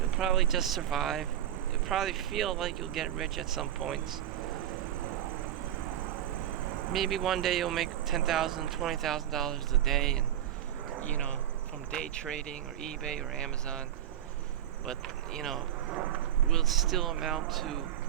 probably just survive. You'll probably feel like you'll get rich at some points. Maybe one day you'll make $10,000, $20,000 a day, and from day trading or eBay or Amazon. But will it still amount to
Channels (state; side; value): quieter; left; 11.3 dB